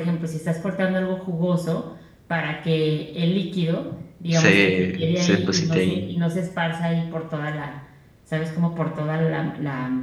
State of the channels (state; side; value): identical; both; correlation 1.00